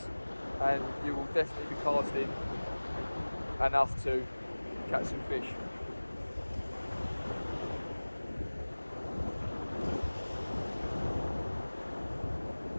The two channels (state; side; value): inverted; both; correlation -1.00